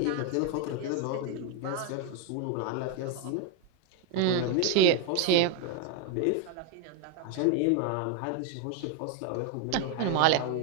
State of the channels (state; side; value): different; both; correlation 0.01